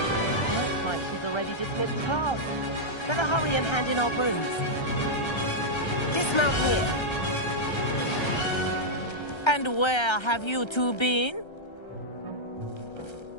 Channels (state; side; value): late; right; 1.3 ms